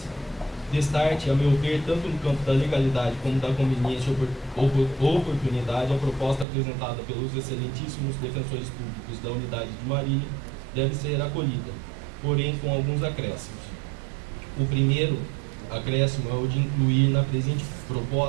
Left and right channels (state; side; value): drops out; left; at 6.5 s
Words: Destarte, a meu ver, tanto no campo da legalidade como da conveniência e oportunidade, a proposta apresentada pelos excelentíssimos defensores públicos da unidade de Marília deve ser acolhida, porém com alguns acréscimos. O primeiro acréscimo é o de incluir na presente